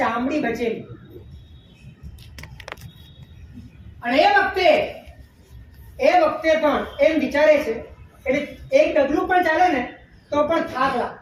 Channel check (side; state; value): both; identical; correlation 1.00